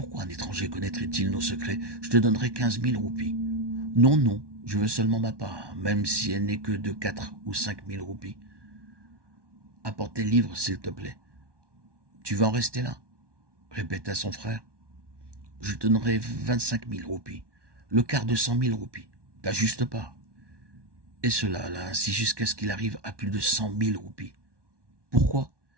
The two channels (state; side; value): late; left; 1.2 ms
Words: un étranger connaîtrait-il nos secrets? Je te donnerai 15 000 roupies. »« Non, non, je veux seulement ma part, même si elle n'est que de 4 ou 5 000 roupies. Apporte les livres, s'il te plaît. »« Tu vas en rester là ?» répéta son frère. « Je te donnerai 25 000 roupies, le quart de 100 000 roupies, ta juste part. » Et cela là, ainsi jusqu'à ce qu'il arrive à plus de 100 000 roupies. Pourquoi?